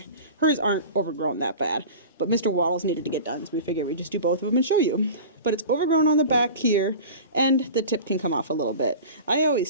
Hers aren't overgrown that bad, but Mr. Waddles needed to get done, so we figured we'd just do both of them and show you. But it's overgrown on the back here, and the tip can come off a little bit. I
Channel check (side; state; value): both; inverted; correlation -0.35